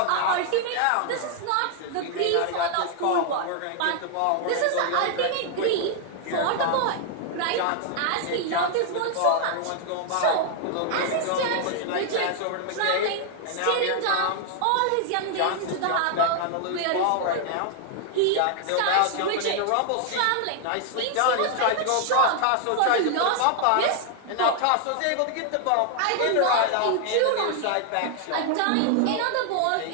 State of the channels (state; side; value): different; both; correlation 0.00